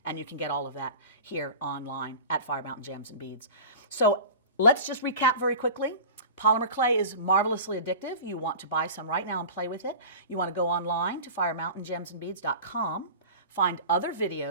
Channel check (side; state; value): both; inverted; correlation -0.36